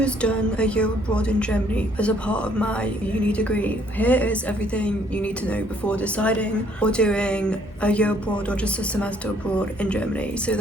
has done a year abroad in Germany as a part of my uni degree, here is everything you need to know before deciding or doing a year abroad or just a semester abroad in Germany, so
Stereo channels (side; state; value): both; normal; correlation 0.64